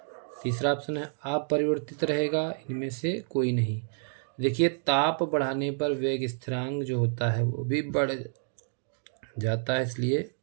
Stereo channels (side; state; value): left; silent; digital silence